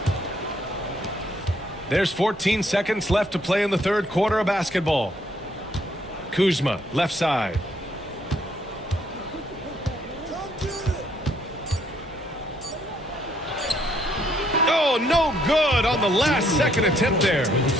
There's 14 seconds left to play in the third quarter of basketball. Kuzma, left side. Oh, no good on the last second attempt there.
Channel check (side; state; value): both; normal; correlation 0.69